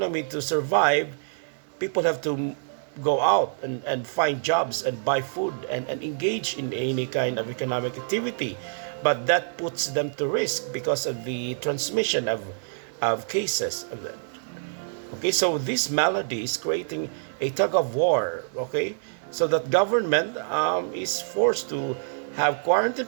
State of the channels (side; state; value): left; silent; 60 dB below the other